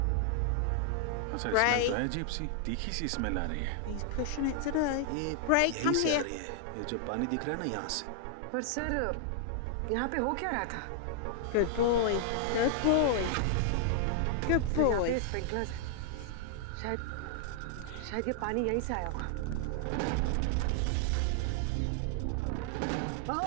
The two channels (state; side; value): different; both; correlation -0.01